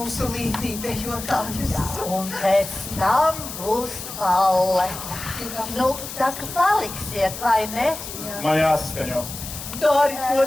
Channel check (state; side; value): noise; left; hiss, 10 dB below the sound